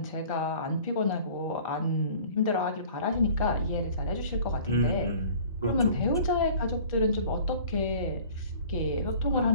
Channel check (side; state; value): both; inverted; correlation -0.47